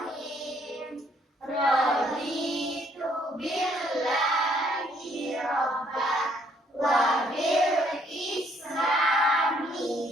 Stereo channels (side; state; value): both; normal; correlation 0.67